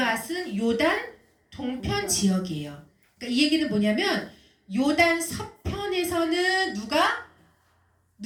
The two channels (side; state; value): both; identical; correlation 1.00